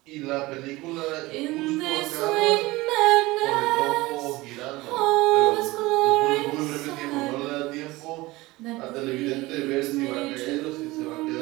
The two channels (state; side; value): quieter; left; 20.4 dB